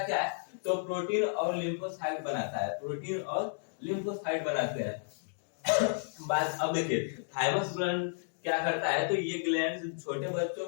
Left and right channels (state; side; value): silent; right; digital silence